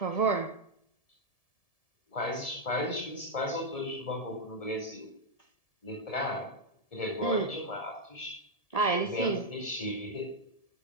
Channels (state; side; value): late; right; 1.7 ms